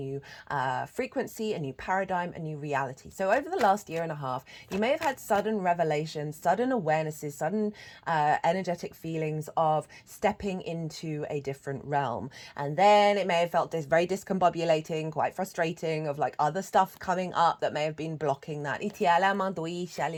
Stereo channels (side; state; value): both; identical; correlation 1.00